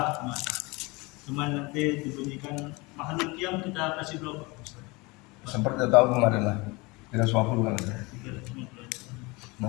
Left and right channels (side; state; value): right; quieter; 25.2 dB